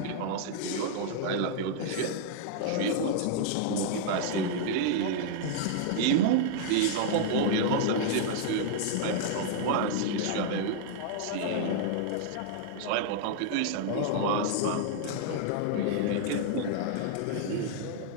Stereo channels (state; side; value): different; both; correlation -0.01